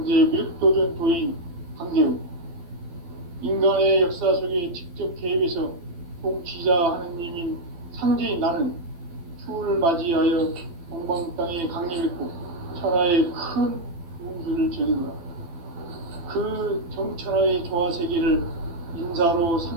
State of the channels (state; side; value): late; left; 12 ms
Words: 미륵도전 도인 강대우, 인간의 역사 속에 직접 개입해서 통치자 하느님인 상제인 나는 추운을 맞이하여 동방 땅에 강림했고 천하의 큰 운수를 전했노라. 그 정천하의 조화 세계를 인사로